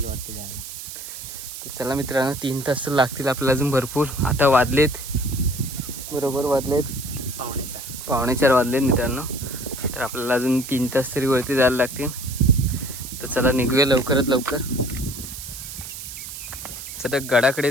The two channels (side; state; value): right; noise; hiss, 10 dB below the sound